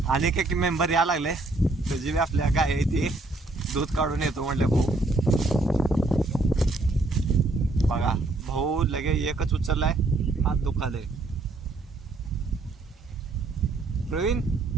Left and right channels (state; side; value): quieter; left; 3.1 dB